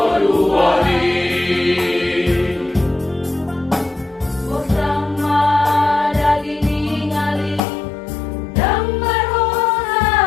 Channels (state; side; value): drops out; right; at 7.6 s